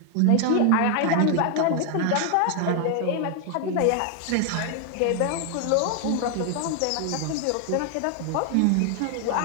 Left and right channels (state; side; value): different; both; correlation 0.00